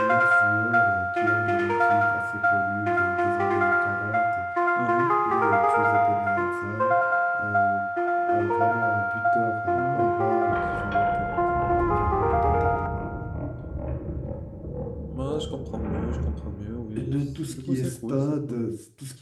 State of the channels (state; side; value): identical; both; correlation 1.00